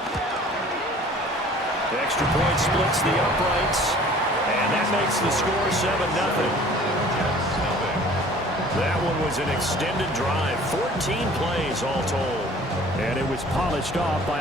The extra point splits the uprights, and that makes the score 7-0. That one was an extended drive, 14 plays all told. And it was polished off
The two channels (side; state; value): both; normal; correlation 0.49